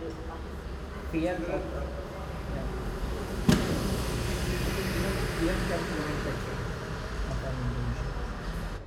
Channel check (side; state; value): both; identical; correlation 1.00